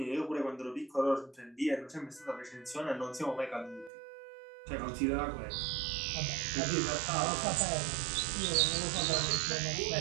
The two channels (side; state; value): left; drops out; at 3.9 s